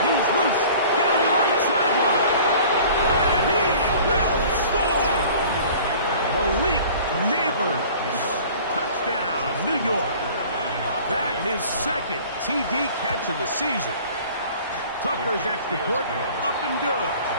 loose down the right sideline. And he will score. Malik Neighbors. Touchdown, New York. That his 2nd TD catch of the season. Tucker's extra point up and good.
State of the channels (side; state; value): both; inverted; correlation -0.47